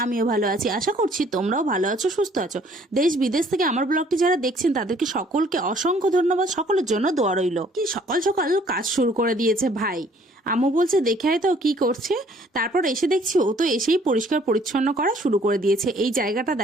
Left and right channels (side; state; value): both; normal; correlation 0.59